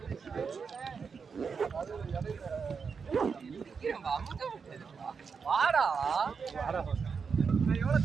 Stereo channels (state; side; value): quieter; left; 5.7 dB